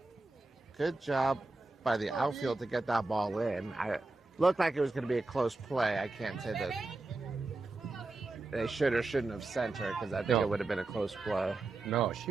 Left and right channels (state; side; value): quieter; left; 3.3 dB